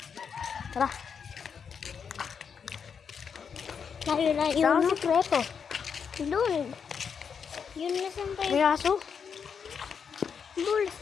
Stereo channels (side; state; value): right; quieter; 6.6 dB